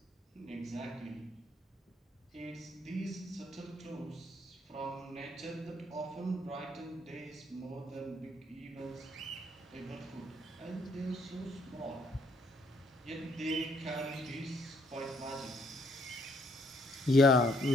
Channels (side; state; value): both; normal; correlation 0.68